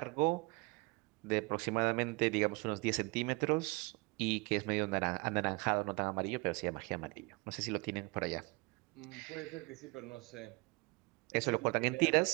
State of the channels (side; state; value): left; quieter; 27.0 dB